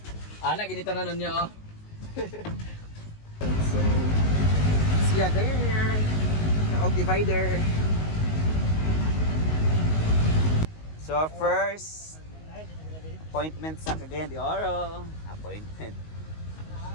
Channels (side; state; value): right; late; 19 ms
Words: Ana ginito na nun niya oh. so, siya there. Naog divider. So, our first appointment sa Cagayan de Oro. Appointment.